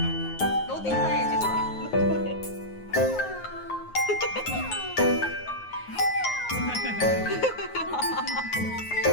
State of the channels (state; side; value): late; right; 9.5 ms